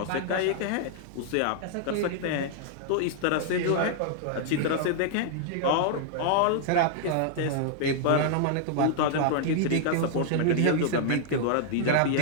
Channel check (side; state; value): both; different; correlation -0.01